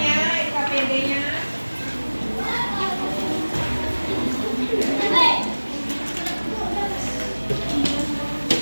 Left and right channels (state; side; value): inverted; both; correlation -1.00